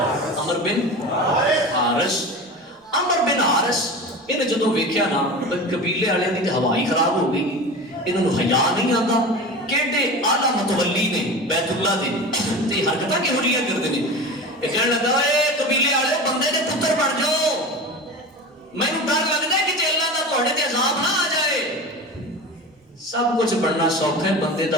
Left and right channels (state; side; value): normal; both; correlation 0.31